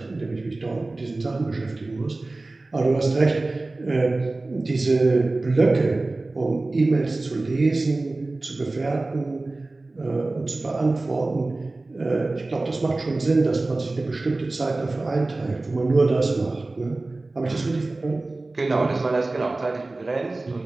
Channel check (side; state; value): left; quieter; 3.1 dB